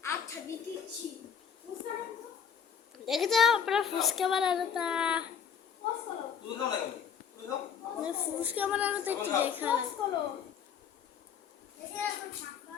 আচ্ছা দিচ্ছি দেখে যাও আপনার ফুসকা বানানো তা ফুসকা বানানো তো একটু দেখা দেখে এখন সাপা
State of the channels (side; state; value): right; quieter; 7.4 dB